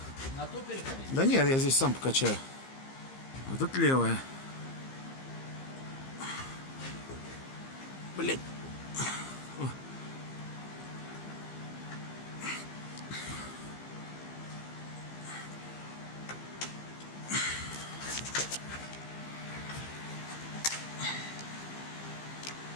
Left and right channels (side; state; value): right; late; 15 ms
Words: На ту переходи? Да нет, я здесь сам покачаю. Вот тут левая. Блять.